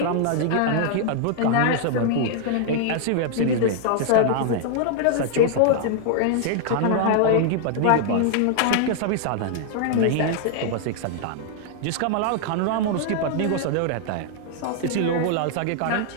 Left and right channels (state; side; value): different; both; correlation 0.00